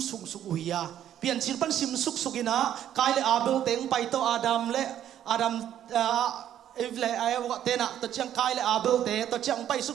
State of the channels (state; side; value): quieter; left; 10.8 dB